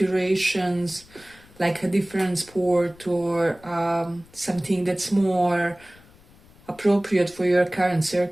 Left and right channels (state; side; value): noise; left; rumble, 26 dB below the sound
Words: like a different sport, or something that's more appropriate for your current